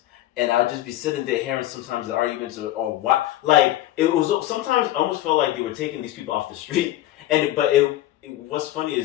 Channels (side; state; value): right; quieter; 14.5 dB